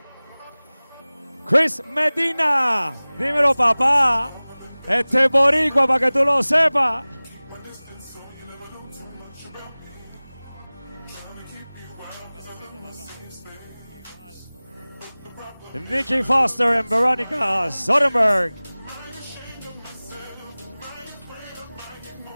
Chris Medina. Dímelo, papá. Este es boricua para que tú lo sepas. Nikki Foster and Veronica Soderberg.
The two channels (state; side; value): inverted; both; correlation -0.99